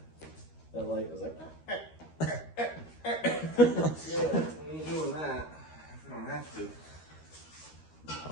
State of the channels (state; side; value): late; right; 13 ms